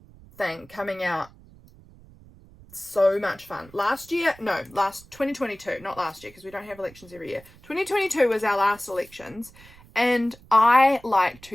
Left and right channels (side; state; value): right; noise; rumble, 23 dB below the sound